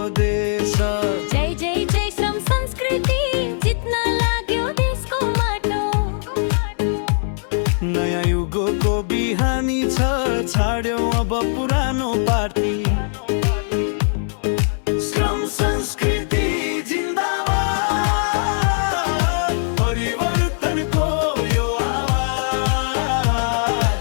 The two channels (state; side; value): silent; right; digital silence